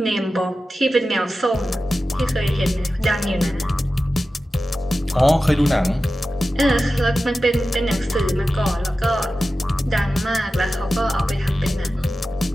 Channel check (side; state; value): both; normal; correlation 0.93